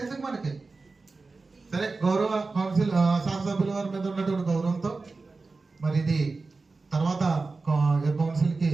ఎందుకు మనకి? సరే, గౌరవ కౌన్సిల్ శాసనసభ్యుల వారి మీద ఉన్నటువంటి గౌరవంతో మరి ఇది తర్వాత కౌన్సిల్ కి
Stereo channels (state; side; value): quieter; left; 3.8 dB